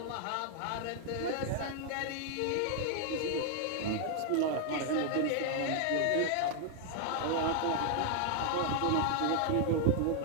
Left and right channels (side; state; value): both; different; correlation 0.00